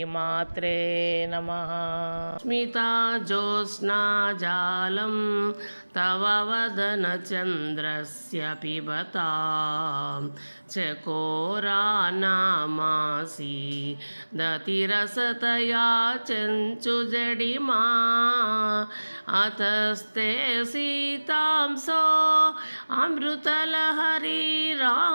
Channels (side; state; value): both; inverted; correlation -1.00